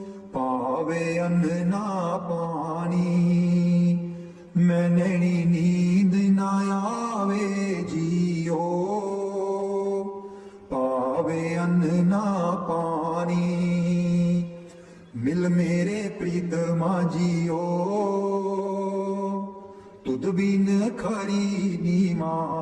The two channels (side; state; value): both; identical; correlation 1.00